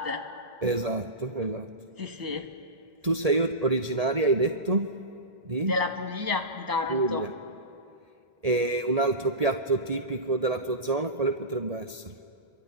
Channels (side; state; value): left; late; 1.8 ms